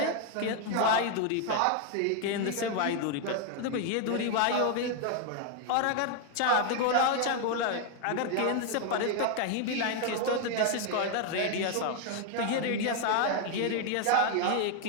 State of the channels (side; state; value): both; different; correlation 0.00